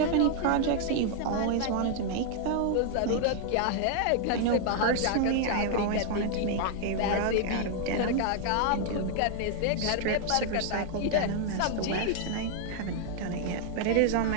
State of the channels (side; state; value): both; different; correlation 0.00